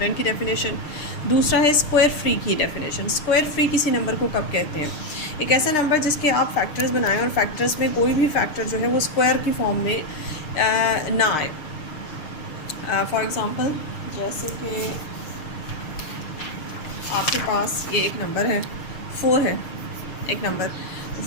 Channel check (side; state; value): right; late; 6.5 ms